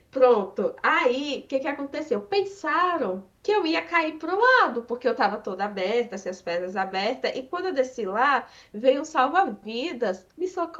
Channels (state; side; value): identical; both; correlation 1.00